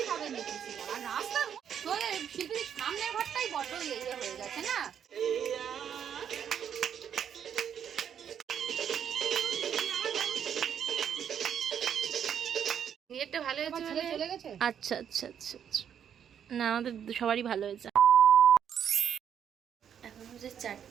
হবে দেখছি। আর রাস্তা তোর শিল্পীর সামনের ঘরটাই বড় ইয়ে হয়ে গেছে না? নেটটা ভালো হয়েছে, ছেলে চলে গেছে। আচ্ছা আচ্ছা আচ্ছা আচ্ছা, না আমাদের সবারই ভালো হয়েছে। এখন হচ্ছে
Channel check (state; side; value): quieter; left; 8.6 dB